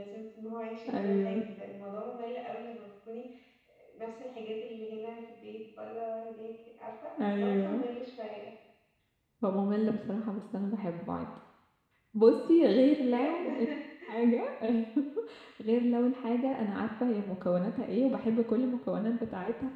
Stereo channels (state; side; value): identical; both; correlation 1.00